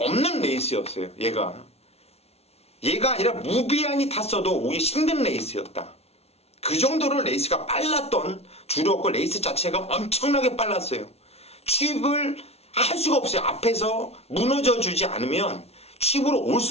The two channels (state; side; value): late; right; 0.30 ms